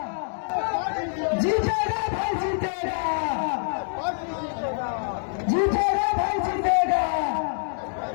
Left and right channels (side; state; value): right; silent; digital silence